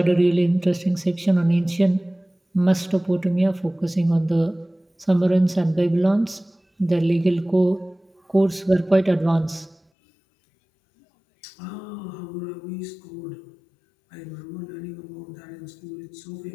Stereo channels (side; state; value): right; drops out; at 9.8 s